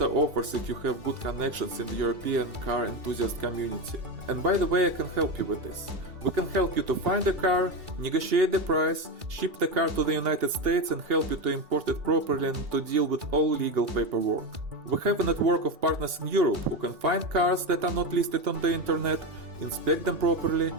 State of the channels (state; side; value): late; left; 2.8 ms